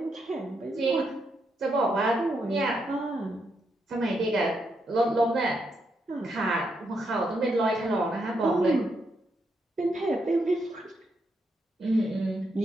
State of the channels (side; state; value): both; normal; correlation 0.80